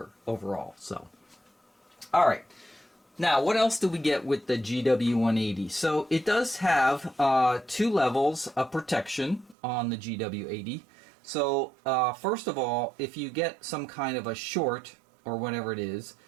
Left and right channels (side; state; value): left; drops out; at 9.6 s